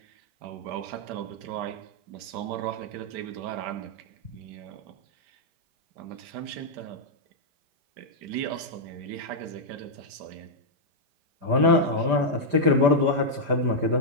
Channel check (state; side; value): late; left; 5.1 ms